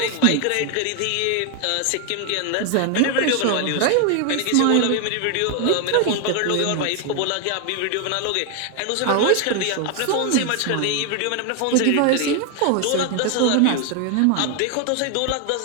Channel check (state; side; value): different; both; correlation 0.01